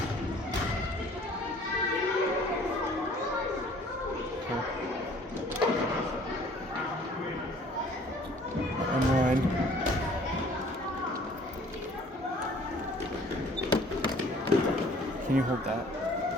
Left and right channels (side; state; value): both; normal; correlation 0.54